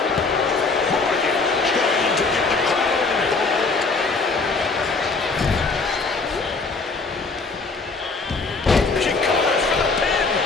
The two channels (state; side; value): quieter; right; 4.0 dB